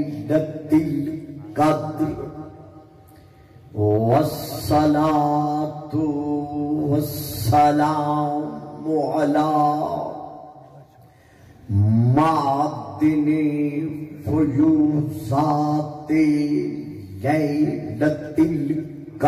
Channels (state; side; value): identical; both; correlation 1.00